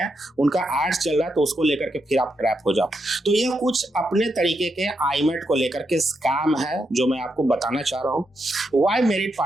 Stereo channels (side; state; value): both; normal; correlation 0.83